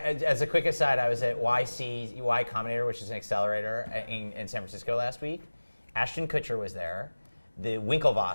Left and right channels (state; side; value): inverted; both; correlation -1.00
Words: as a quick aside, I was at Y Combinator, which is an accelerator in San Francisco last week. Ashton Kutcher was there. The